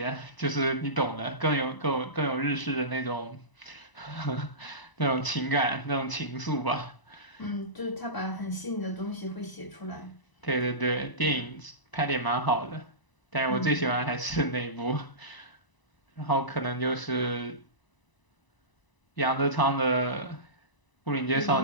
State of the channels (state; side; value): late; right; 1.0 ms